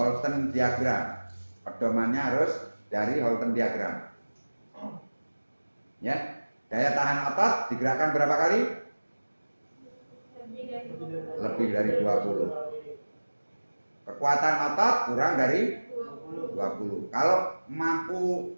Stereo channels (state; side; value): inverted; both; correlation -1.00